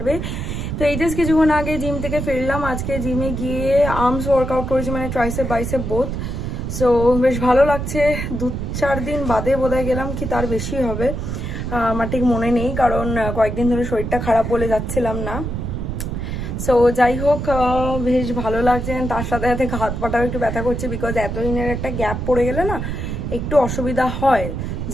তো এই জাস্ট কিছুক্ষণ আগে জিম থেকে ফিরলাম। আজকে জিমে গিয়ে আর্মস ওয়ার্কআউট করেছি, মানে ট্রাইসেপ বাইসেপ বোথ। সো বেশ ভালো লাগছে। 2-4 দিন বাদে বোধহয় গেলাম, কি তার বেশি হবে আমার ঠিক মনে নেই, কারণ কয়েকদিন ধরে শরীরটা খারাপ বলে যাচ্ছিলাম না। সো যাই হোক, বেশ ভালো লাগছে। তার সাথে সাথে হাত পাটাও একটু ব্যথা করছে, বিকজ এতদিনের একটা গ্যাপ পড়ে গেলে না একটু অসুবিধা হয়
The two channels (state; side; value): noise; right; rumble, 4 dB below the sound